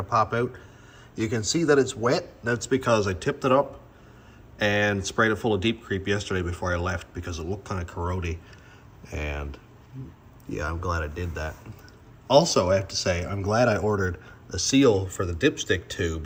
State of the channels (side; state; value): both; identical; correlation 1.00